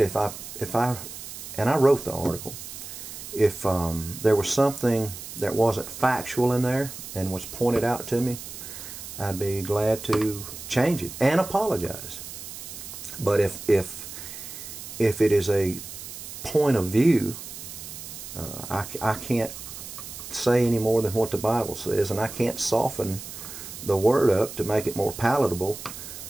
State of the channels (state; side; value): noise; right; hiss, 11 dB below the sound